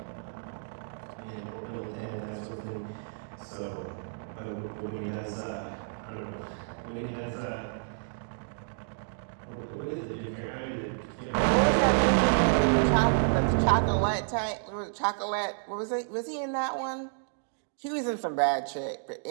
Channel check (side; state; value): left; silent; digital silence